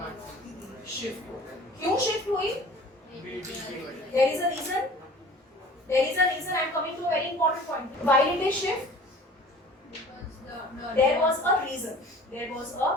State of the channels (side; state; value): both; normal; correlation 0.46